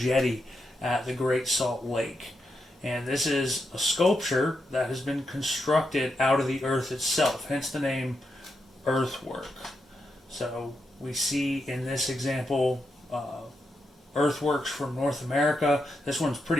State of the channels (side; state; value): both; normal; correlation 0.84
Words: at the Great Salt Lake. And this is a sculpture that has been constructed out of the earth itself, hence the name earthwork. So we see in this example earthworks from North America. This one's